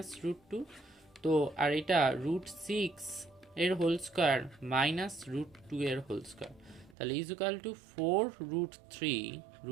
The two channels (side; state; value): left; drops out; at 7.0 s